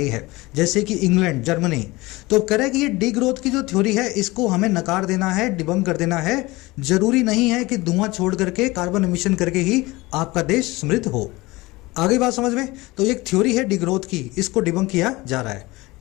है, जैसे कि इंग्लैंड, जर्मनी। तो कह रहे कि ये डी ग्रोथ की जो थ्योरी है इसको हमें नकार देना है, डिबंक कर देना है। जरूरी नहीं है कि धुआं छोड़ करके, कार्बन एमिशन करके ही आपका देश समृद्ध हो। आगे बात समझ में? तो एक थ्योरी है डी ग्रोथ की, इसको डिबंक किया जा रहा है।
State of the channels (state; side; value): quieter; right; 21.4 dB